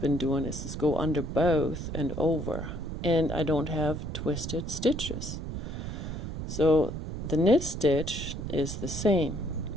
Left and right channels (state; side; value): noise; right; rumble, 6 dB below the sound